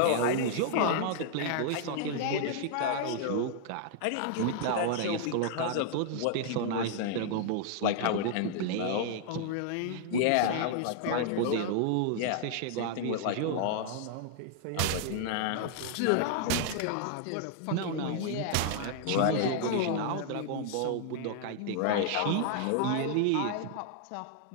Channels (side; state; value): both; different; correlation -0.01